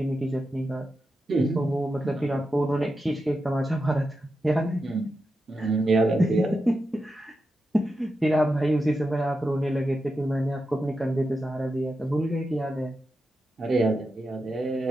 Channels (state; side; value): normal; both; correlation 0.89